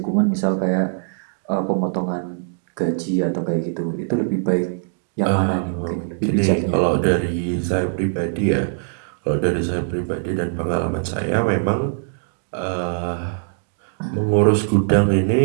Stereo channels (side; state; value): left; silent; digital silence